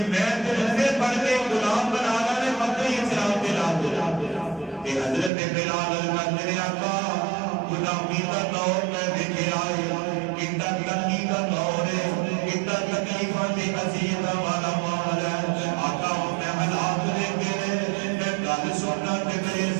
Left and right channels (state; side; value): drops out; left; at 5.3 s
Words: میں تے رسے پڑھ کے غلام بنانا نے مکہ اسلام دے لا تے حضرت بلال کہندے نے آقا غلامی دا دور میں دیکھے آئے کتنا تنگی کا دور ہے کتنا تکلیفاں تے اذیتاں والا ماحول ہے آقا میں حالات دیکھے میں گل سننا تے میرے